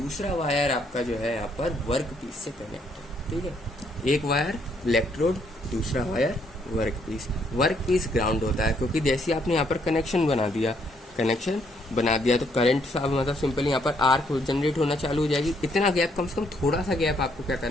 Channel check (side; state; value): both; normal; correlation 0.70